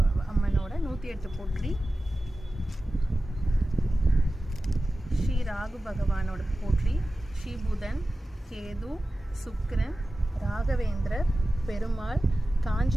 அம்மனோட 108 போற்றி, ஸ்ரீ ராகு பகவானோட போற்றி, ஸ்ரீ புதன், கேது, சுக்கிரன், ராகவேந்திரர், பெருமாள்,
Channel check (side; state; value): both; normal; correlation 0.95